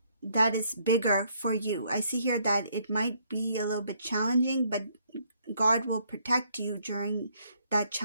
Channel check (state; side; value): inverted; both; correlation -0.68